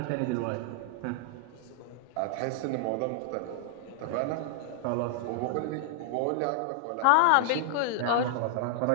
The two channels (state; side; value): different; both; correlation -0.01